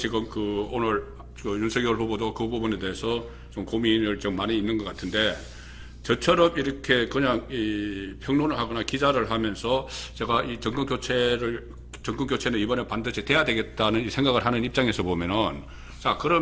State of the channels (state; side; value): identical; both; correlation 1.00